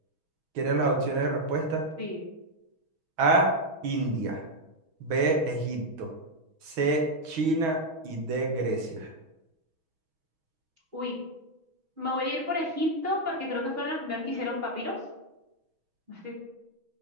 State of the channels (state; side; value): late; left; 6.2 ms